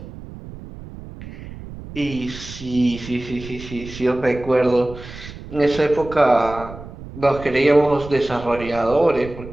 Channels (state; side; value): noise; right; rumble, 14 dB below the sound